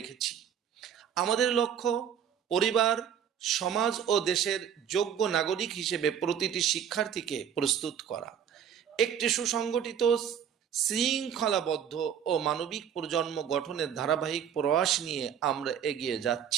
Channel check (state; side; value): quieter; left; 8.6 dB